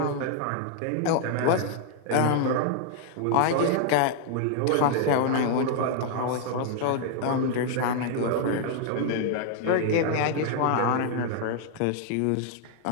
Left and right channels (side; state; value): both; different; correlation 0.00